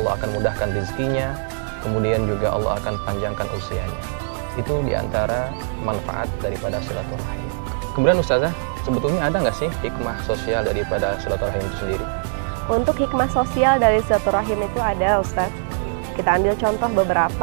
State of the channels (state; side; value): silent; left; 64 dB below the other